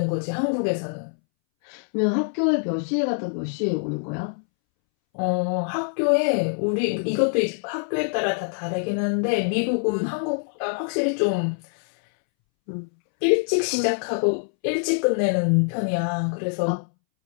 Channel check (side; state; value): right; silent; 62 dB below the other